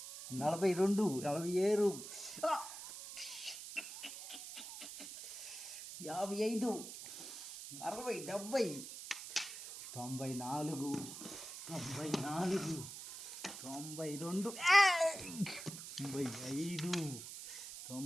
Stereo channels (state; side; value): noise; right; hiss, 10 dB below the sound